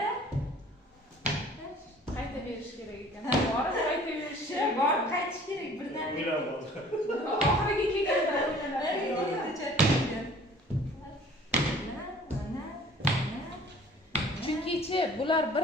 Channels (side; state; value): both; normal; correlation 0.51